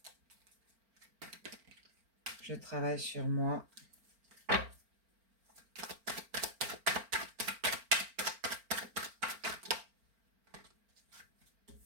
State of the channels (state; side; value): late; left; 4.4 ms